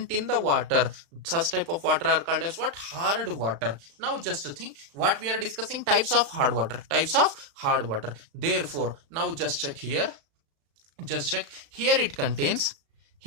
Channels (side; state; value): left; late; 36 ms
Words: in the water, such type of water are called as what? Hard water. Now just to think what we are discussing, types of hard water. Types of hard water. Therefore, now just check here. Just check here, it contains,